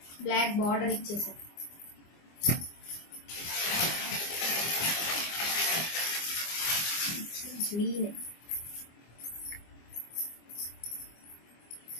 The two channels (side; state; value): right; late; 24 ms